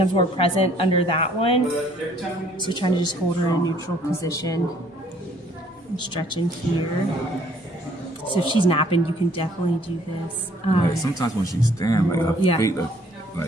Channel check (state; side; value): normal; both; correlation 0.61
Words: more present under that one? So trying to just hold her in a neutral position and stretching here. So if she's napping, you can definitely do this. Like sometimes when she's standing, like her feet,